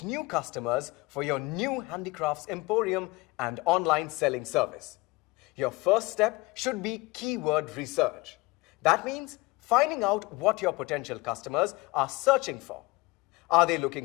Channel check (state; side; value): quieter; right; 23.0 dB